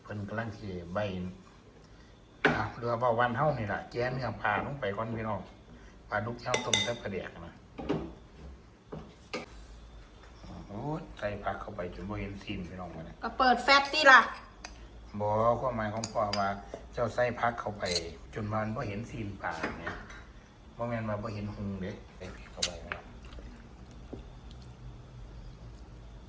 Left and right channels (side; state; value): both; identical; correlation 1.00